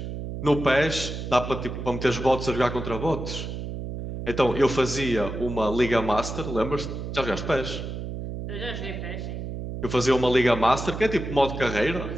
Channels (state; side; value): noise; right; hum, 6 dB below the sound